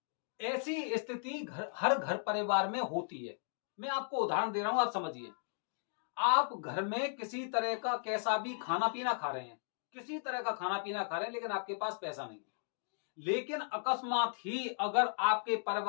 ऐसी स्थिति हर घर परिवार में होती है। मैं आपको उदाहरण दे रहा हूं, आप समझिए। आप घर में किसी तरह का कैसा भी खाना पीना खा रहे हैं, किसी तरह का खाना पीना खा रहे हैं, लेकिन आपके पास पैसा नहीं है। लेकिन अकस्मात ही अगर आपके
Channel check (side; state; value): right; silent; digital silence